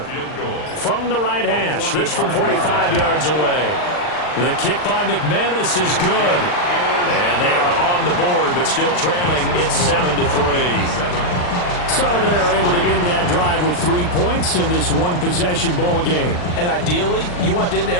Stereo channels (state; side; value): late; right; 39 ms